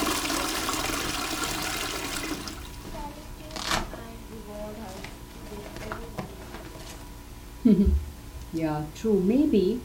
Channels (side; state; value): both; identical; correlation 1.00